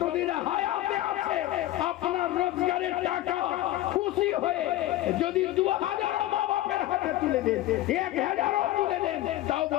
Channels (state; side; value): quieter; right; 15.1 dB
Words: হায়াতে আছে আপনার রোজগারের টাকা খুশি হয়ে যদি 2000 মা বাপের হাতে তুলে দেন, 1000 তুলে দেন, তাও